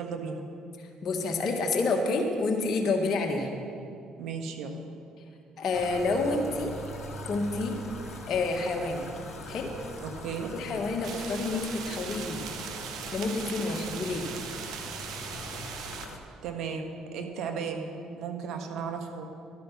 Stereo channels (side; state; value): both; normal; correlation 0.65